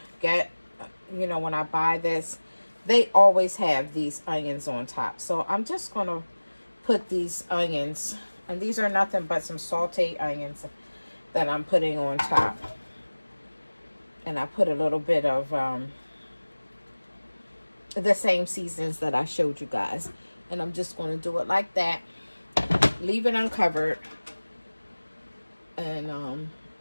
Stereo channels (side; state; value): both; inverted; correlation -1.00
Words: get, you know, when I buy this, they always have these onions on top. So I'm just going to put these onions, and these are nothing but some sauteed onions that I'm putting on top. And I put a little bit of the same seasons that I showed you guys. And I'm just going to do it like that. Leave it uncovered. And